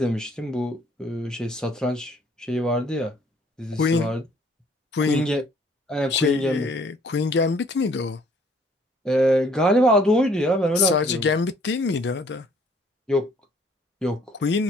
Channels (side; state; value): both; normal; correlation 0.60